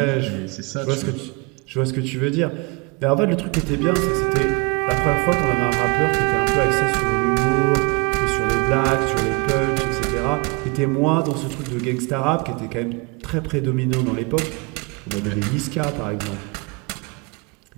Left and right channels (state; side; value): quieter; left; 29.3 dB